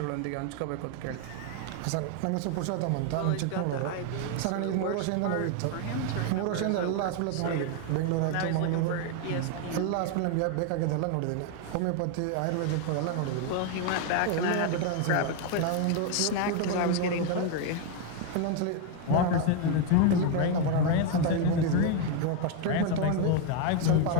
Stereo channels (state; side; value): different; both; correlation 0.01